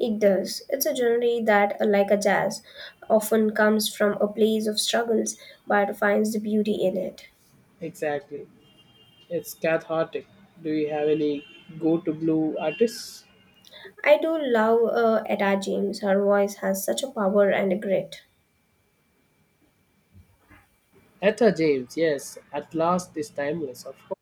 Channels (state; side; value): identical; both; correlation 1.00